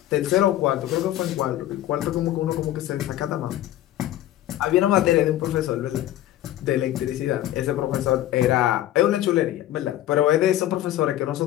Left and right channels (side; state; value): right; quieter; 13.4 dB